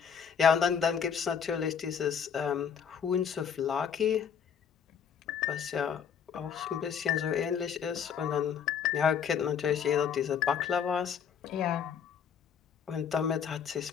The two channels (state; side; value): quieter; right; 7.5 dB